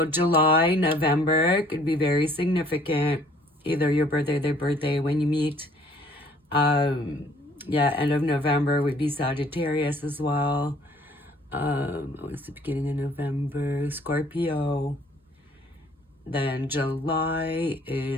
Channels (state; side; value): normal; both; correlation 0.57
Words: July, November could be very significant. Either your birthday, their birthday when you meet. Yeah, end of November would be Sagittarius as well. What's the beginning of November? Scorpio. Then July